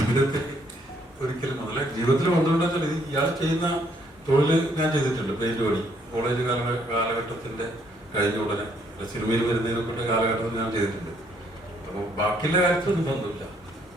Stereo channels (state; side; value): normal; both; correlation 0.68